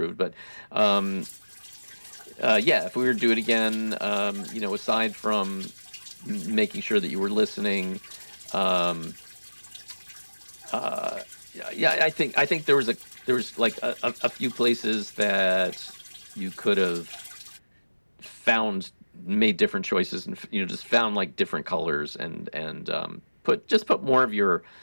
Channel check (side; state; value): both; inverted; correlation -1.00